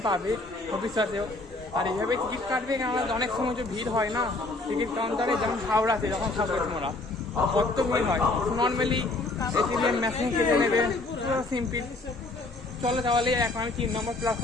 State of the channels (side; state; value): right; quieter; 3.1 dB